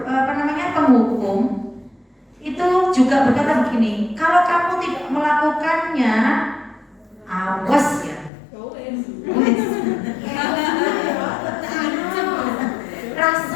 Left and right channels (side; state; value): right; drops out; at 8.3 s